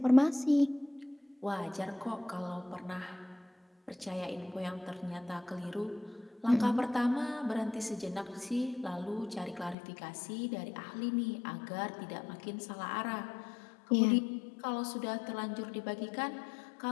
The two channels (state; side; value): drops out; right; at 9.8 s